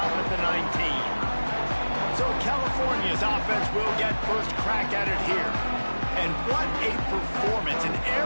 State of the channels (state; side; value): inverted; both; correlation -1.00